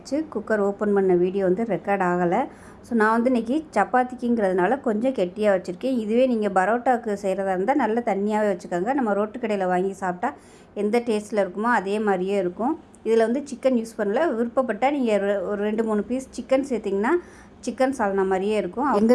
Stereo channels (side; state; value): both; identical; correlation 1.00